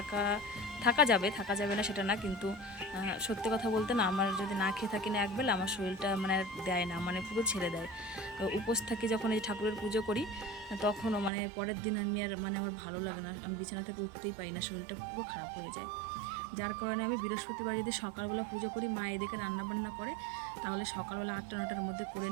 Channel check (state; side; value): drops out; left; at 11.3 s